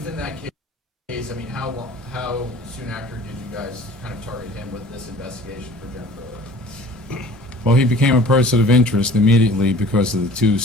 that case, I mean, how soon after did you guys kind of target him with this investigation for Jennifer Odom? Well, he became a person of interest immediately because of the two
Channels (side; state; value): both; normal; correlation 0.47